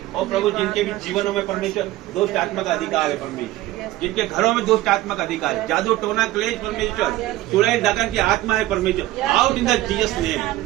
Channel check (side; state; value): left; quieter; 16.3 dB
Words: और प्रभु जिनके भी जीवनों में परमेश्वर दुष्ट आत्मा का अधिकार है परमेश्वर, जिनके घरों में दुष्ट आत्मा का अधिकार है, जादू, टोना, क्लेश परमेश्वर, चुड़ैल, डकन की आत्मा है परमेश्वर, out in the Jesus